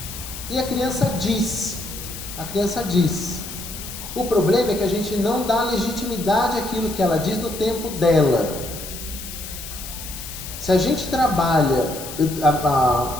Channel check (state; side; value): noise; left; hiss, 10 dB below the sound